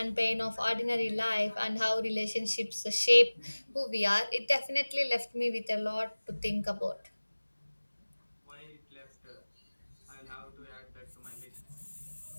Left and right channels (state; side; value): inverted; both; correlation -1.00